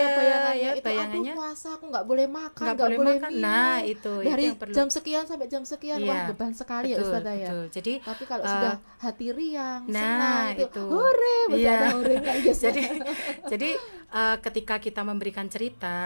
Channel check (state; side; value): inverted; both; correlation -1.00